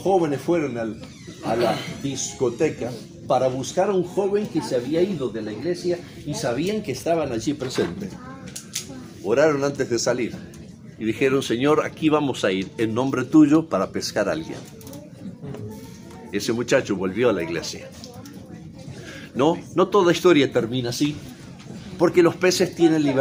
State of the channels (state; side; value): identical; both; correlation 1.00